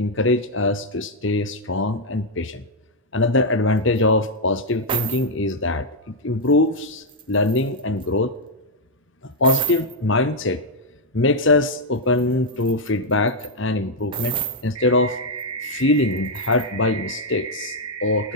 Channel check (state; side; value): normal; both; correlation -0.01